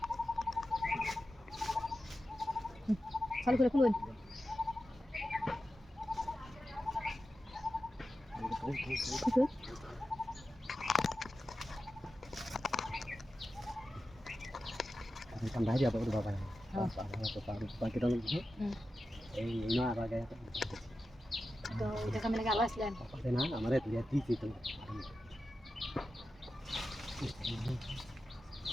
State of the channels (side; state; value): both; normal; correlation 0.92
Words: করে খুলুন Tambah aja apa udah bapak ya? Bapak kita lagi ini apa kayak তো এটা কামে লাগা আসলেন apa sih nah আমারে lihat di situ